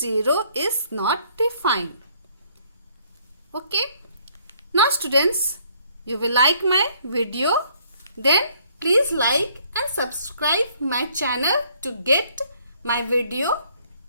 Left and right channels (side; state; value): both; inverted; correlation -0.63